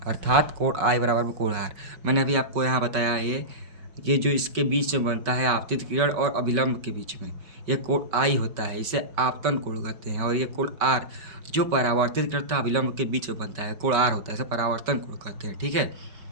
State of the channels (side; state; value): left; late; 5.2 ms